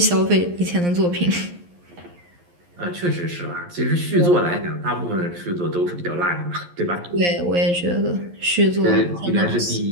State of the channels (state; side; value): late; left; 11 ms